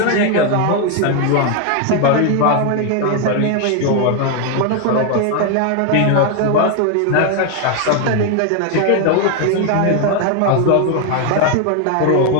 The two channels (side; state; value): both; different; correlation 0.01